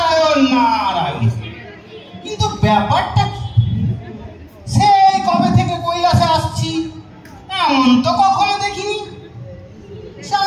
নারায়ণ। কিন্তু ব্যাপারটা কি? সেই কবে থেকে কৈলাসে আসছি, এমন তো কখনো দেখিনি।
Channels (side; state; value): both; identical; correlation 1.00